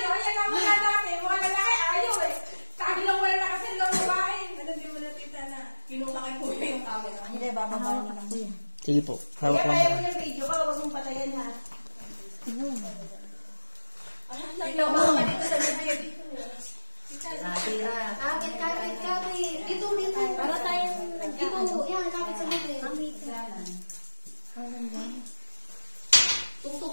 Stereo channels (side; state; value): both; inverted; correlation -1.00